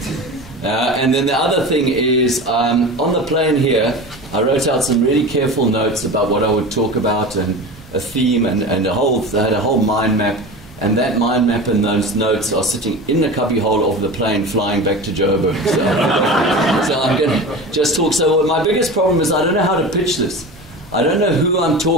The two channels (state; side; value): normal; both; correlation 0.31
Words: And then the other thing is, on the plane here, I wrote out some really careful notes about what I would talk about and a theme and I had a whole mind map. And that mind map and those notes are sitting in the cubbyhole of the plane flying back to Joburg. So I'm going to just talk. So my biggest problem is I don't know how to pitch this. I don't know who I'm